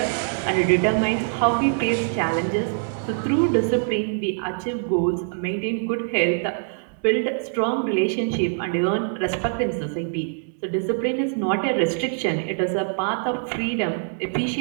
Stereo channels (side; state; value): left; silent; 62 dB below the other